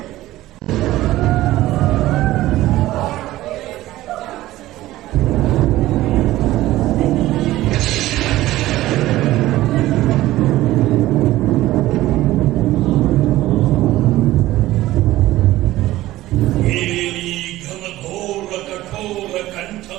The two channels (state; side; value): quieter; left; 16.1 dB